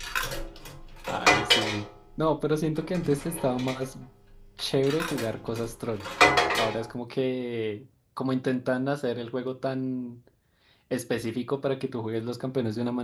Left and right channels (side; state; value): both; identical; correlation 1.00